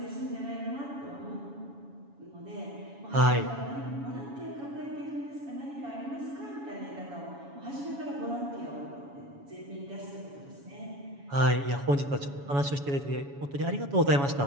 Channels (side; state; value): left; late; 7.1 ms